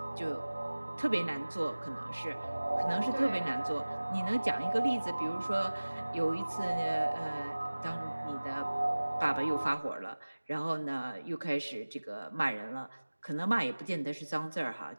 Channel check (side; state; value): both; inverted; correlation -1.00